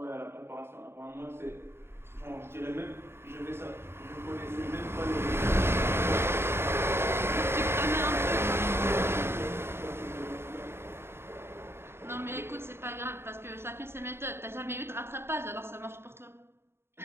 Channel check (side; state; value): left; late; 0.12 ms